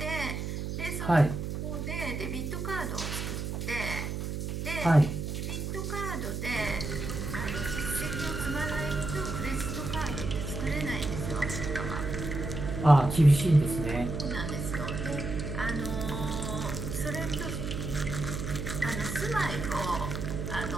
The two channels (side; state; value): right; noise; hum, 4 dB below the sound